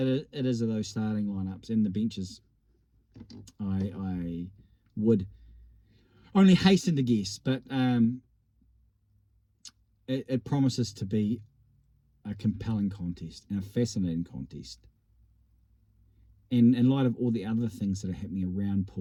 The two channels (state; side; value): identical; both; correlation 1.00